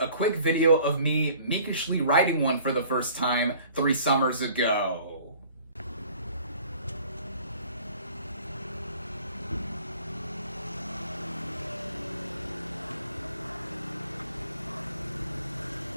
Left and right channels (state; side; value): inverted; both; correlation -0.51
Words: a quick video of me meekishly riding one for the first time 3 summers ago.